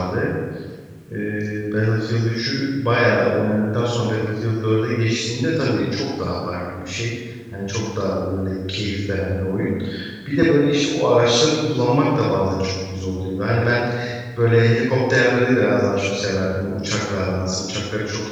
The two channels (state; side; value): identical; both; correlation 1.00